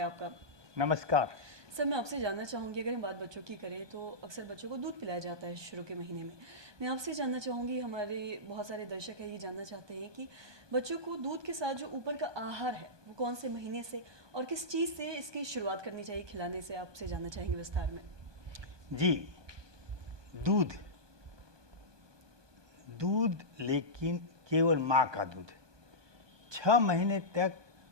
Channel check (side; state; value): left; late; 1.2 ms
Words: आपका। नमस्कार। सर, मैं आपसे जानना चाहूँगी, अगर हम बात बच्चों की करें तो अक्सर बच्चों को दूध पिलाया जाता है शुरू के महीने में। मैं आपसे जानना चाहूँगी, हमारे बहुत सारे दर्शक हैं ये जानना चाहते हैं कि बच्चों को दूध के साथ जो ऊपर का आहार है वो कौन से महीने से और किस चीज़ से इसकी शुरुआत करनी चाहिए खिलाने से, आपसे जानना चाहेंगे विस्तार में। जी, दूध दूध लेकिन केवल माँ का दूध। 6 महीने तक